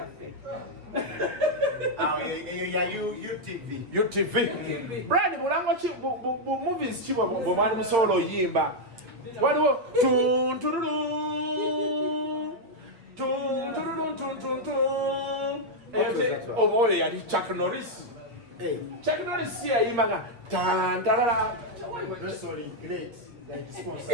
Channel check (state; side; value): late; left; 8.4 ms